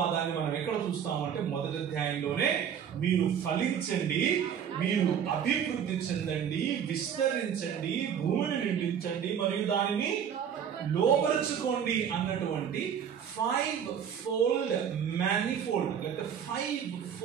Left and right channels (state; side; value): quieter; left; 8.2 dB